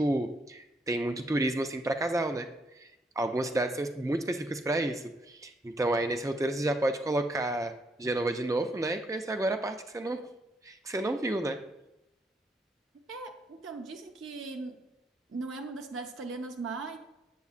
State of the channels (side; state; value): both; normal; correlation 0.74